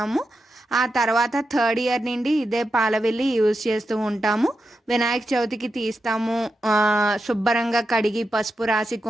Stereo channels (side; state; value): both; normal; correlation 0.88